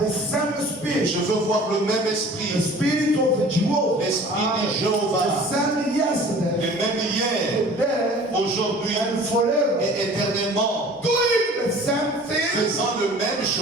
same spirit. Je veux voir le même The esprit. spirit of Jehovah. L'esprit de The Jéhovah. same yesterday, Le même hier, today, aujourd'hui and forever. et éternellement. Doing the same thing. Faisant le même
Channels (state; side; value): normal; both; correlation 0.46